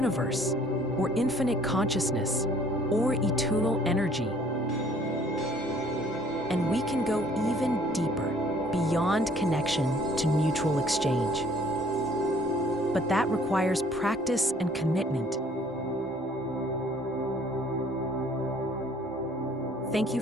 or infinite consciousness, or eternal energy. And we can go even deeper, beyond connection to mutual exchange. But that requires practice and commitment. Thank you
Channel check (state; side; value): normal; both; correlation 0.58